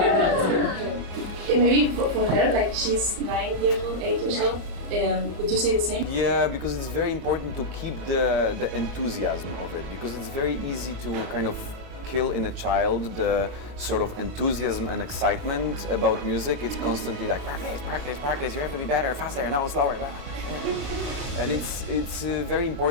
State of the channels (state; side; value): late; left; 34 ms